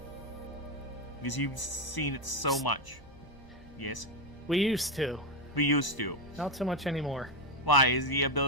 Because you've seen it so much. Yes? We used to. We used to. Not so much anymore. Why? Is the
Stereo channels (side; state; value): right; noise; hum, 24 dB below the sound